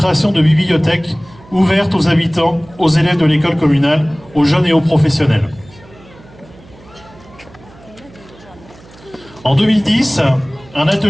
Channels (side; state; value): right; noise; hum, 24 dB below the sound